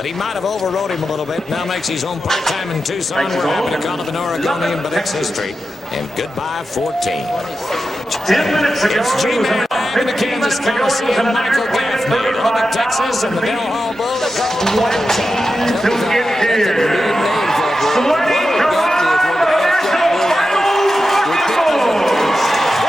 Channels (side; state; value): both; normal; correlation 0.91